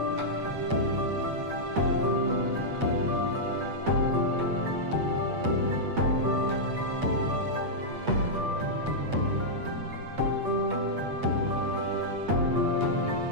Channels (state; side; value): late; left; 8.4 ms